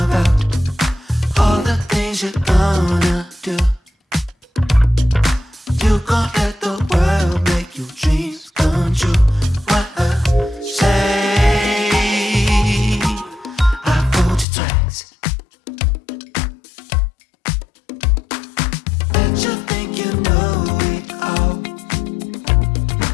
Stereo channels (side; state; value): right; drops out; at 14.5 s